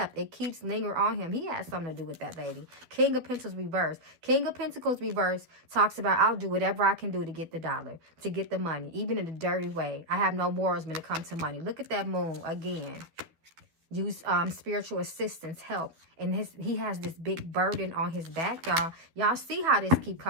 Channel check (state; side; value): late; left; 12 ms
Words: It keeps lingering on him. He has something to do with that, baby. King of Pentacles reverse. King of Pentacles reverse talks about, I'll do whatever I can do to get the dollar, to get the money, even in a dirty way. I have no morals when it comes to money. Look at that moon again. Use spiritual assistance, help. And he has this big burden on his back, y'all. Y'all see how this keep